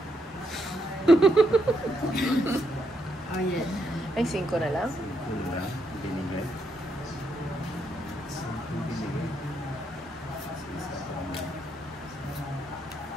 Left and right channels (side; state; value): both; normal; correlation 0.78